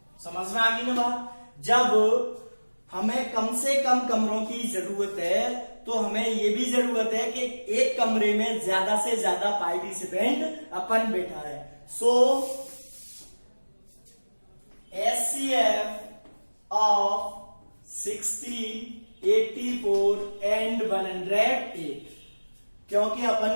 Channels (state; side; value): inverted; both; correlation -1.00